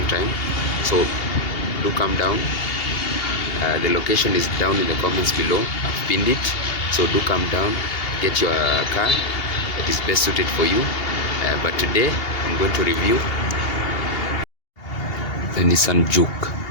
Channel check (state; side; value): late; right; 2.8 ms